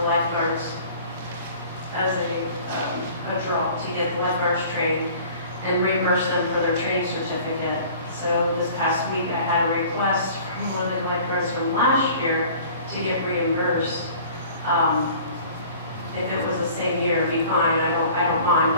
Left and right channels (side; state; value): both; inverted; correlation -0.48